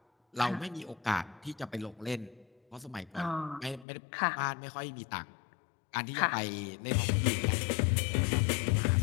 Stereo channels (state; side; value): drops out; right; at 3.9 s